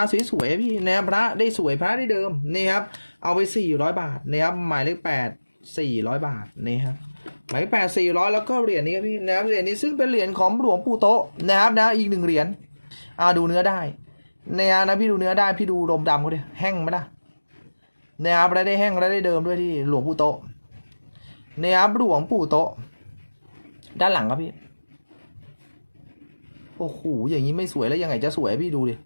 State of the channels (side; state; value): both; inverted; correlation -1.00